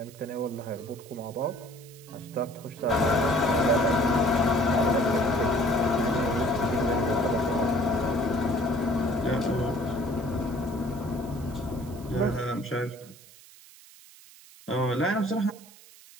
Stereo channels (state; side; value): noise; right; hiss, 22 dB below the sound